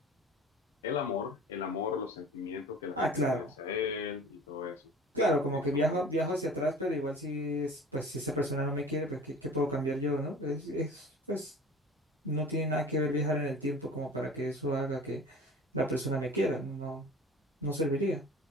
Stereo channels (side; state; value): both; normal; correlation 0.42